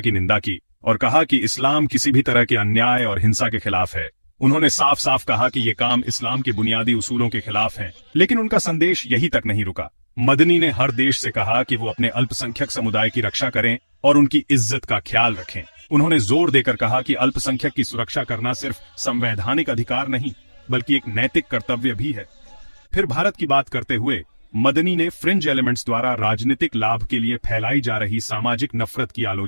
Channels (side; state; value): both; inverted; correlation -1.00